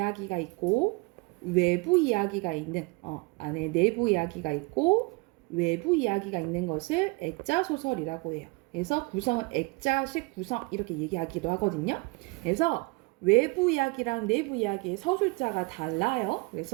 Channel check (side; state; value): left; quieter; 26.9 dB